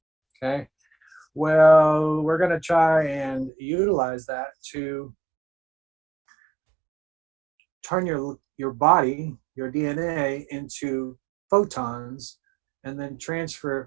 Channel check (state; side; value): drops out; left; at 3.5 s